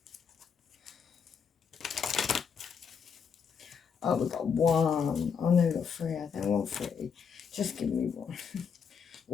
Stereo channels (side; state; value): right; quieter; 6.6 dB